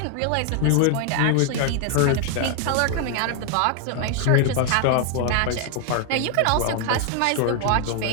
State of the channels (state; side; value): different; both; correlation 0.00